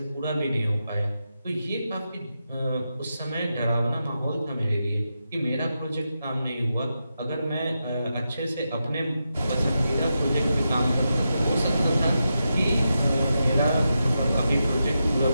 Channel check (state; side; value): inverted; both; correlation -0.87